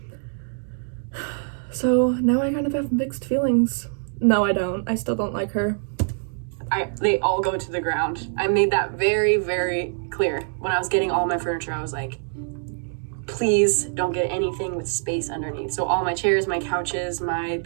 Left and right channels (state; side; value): silent; left; digital silence